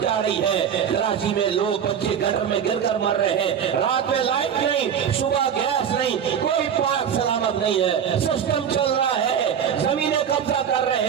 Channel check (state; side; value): quieter; left; 8.3 dB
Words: جا رہی ہے۔ کراچی میں لوگ بچے گٹر میں گر کر مر رہے ہیں، رات میں لائٹ نہیں، صبح گیس نہیں، کوئی پاک سلامت نہیں ہے۔ سسٹم چل رہا ہے، زمینیں قبضہ کر رہے